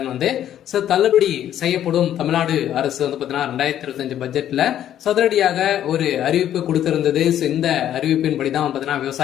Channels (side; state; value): right; quieter; 11.1 dB